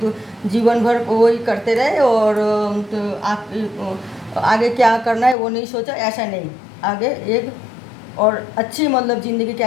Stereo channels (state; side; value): drops out; right; at 5.4 s